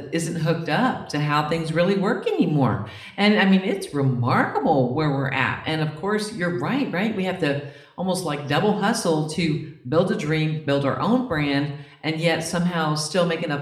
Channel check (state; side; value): identical; both; correlation 1.00